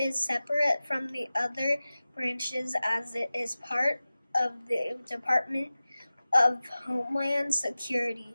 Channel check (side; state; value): both; inverted; correlation -0.96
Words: separate from the other branches as it is part of the Department of Homeland Security,